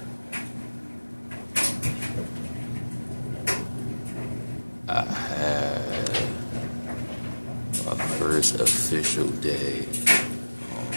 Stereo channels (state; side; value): inverted; both; correlation -1.00